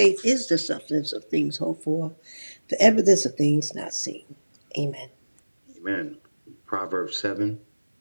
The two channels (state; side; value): inverted; both; correlation -1.00